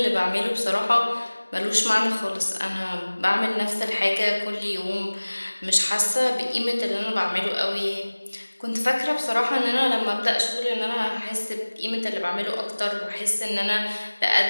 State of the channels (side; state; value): both; inverted; correlation -1.00